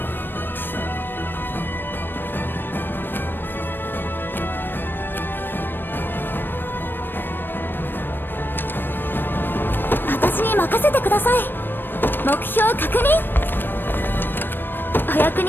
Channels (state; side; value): late; right; 0.095 ms